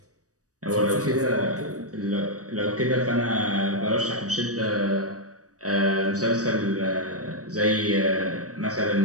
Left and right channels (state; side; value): late; left; 0.66 ms